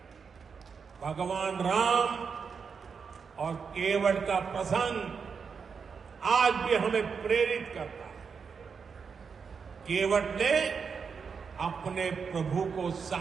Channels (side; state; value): left; quieter; 5.9 dB